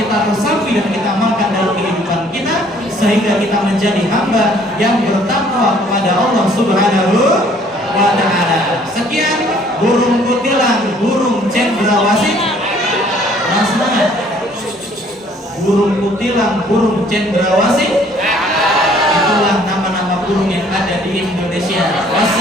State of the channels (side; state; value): both; normal; correlation 0.59